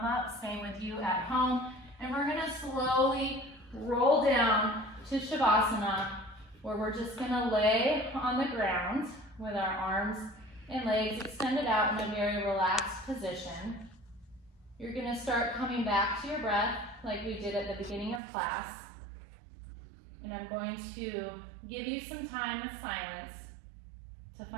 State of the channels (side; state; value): left; drops out; at 18.2 s